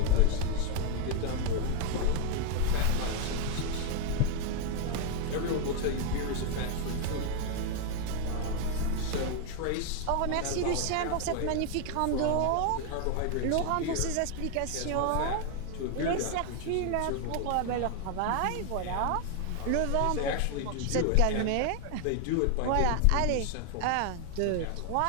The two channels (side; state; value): both; different; correlation 0.00